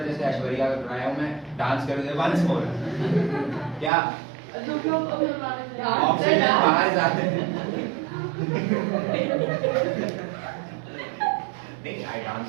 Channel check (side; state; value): left; drops out; at 3.9 s